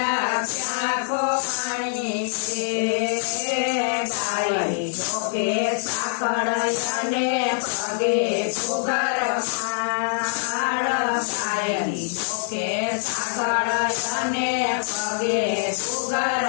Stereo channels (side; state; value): right; silent; 63 dB below the other